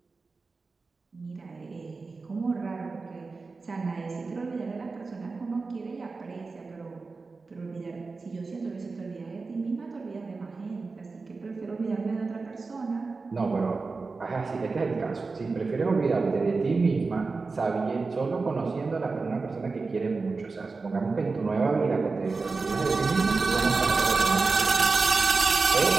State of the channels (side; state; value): left; quieter; 4.1 dB